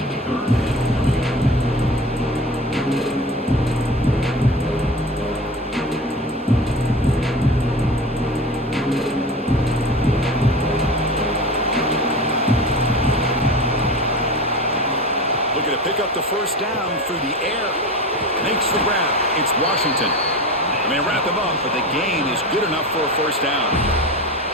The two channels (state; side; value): normal; both; correlation 0.31